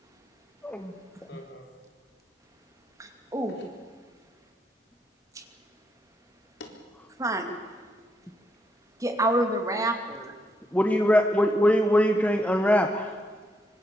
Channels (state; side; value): normal; both; correlation 0.78